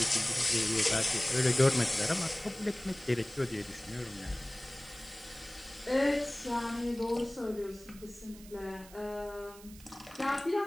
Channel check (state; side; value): noise; right; hiss, 20 dB below the sound